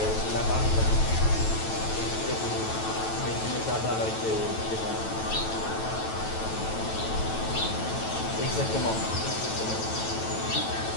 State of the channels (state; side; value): late; right; 9.1 ms